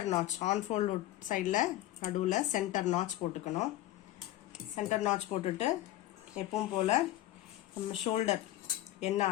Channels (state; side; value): quieter; right; 15.1 dB